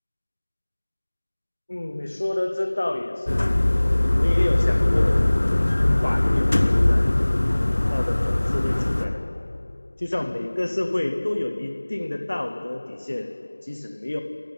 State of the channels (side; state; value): both; inverted; correlation -1.00